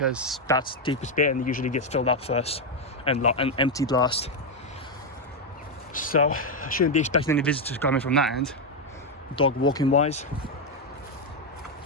that's the deepest bit and it usually gets filled up first and emptied last. So I shouldn't be expecting any visitors coming from that end, dog walking wise.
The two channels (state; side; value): normal; both; correlation 0.03